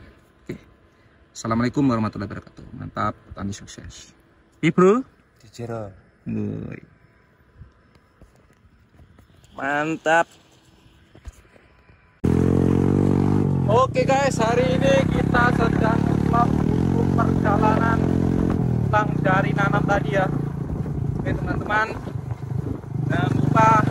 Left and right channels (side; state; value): both; identical; correlation 1.00